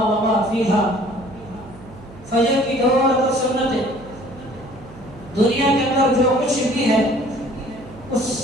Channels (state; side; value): noise; right; hum, 19 dB below the sound